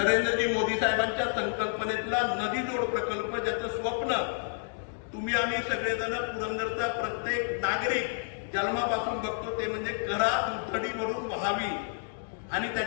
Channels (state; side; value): silent; right; digital silence